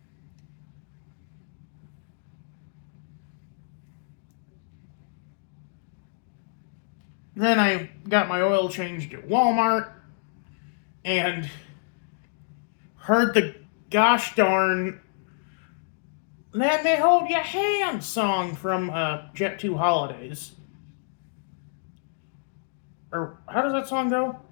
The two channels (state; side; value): silent; right; digital silence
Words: Then I got my oil changed at Walmart and heard gosh darn Let Me Hold Your Hand song from Jet 2 Holidays. Or how does that song go?